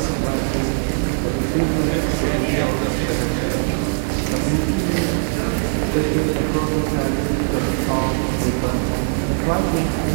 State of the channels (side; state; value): left; silent; digital silence